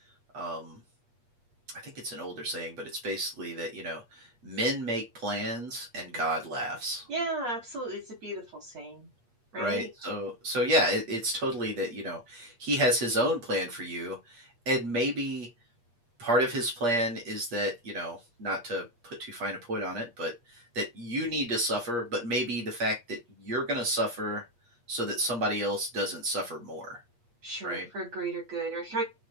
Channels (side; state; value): left; late; 8.5 ms